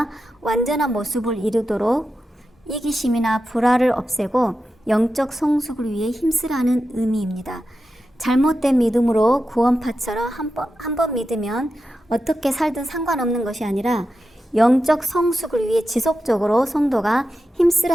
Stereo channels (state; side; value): normal; both; correlation 0.90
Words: 완전한 모습을 이루도록 이기심이나 불화를 없애고 영적 성숙을 위해 힘쓰라는 의미입니다. 잘못된 믿음으로 구원파처럼 한 번 믿으면 어떻게 살든 상관없는 것이 아니라 영적 성숙을 위해 지속적으로 성도가